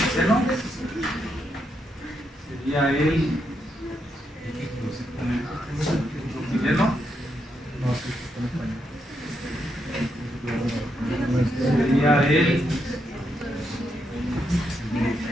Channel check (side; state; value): both; normal; correlation 0.81